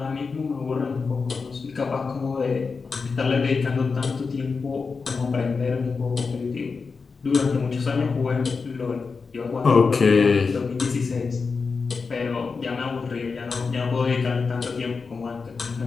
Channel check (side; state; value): right; quieter; 4.8 dB